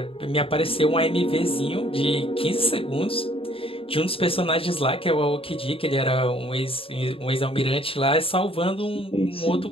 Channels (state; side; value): late; right; 0.27 ms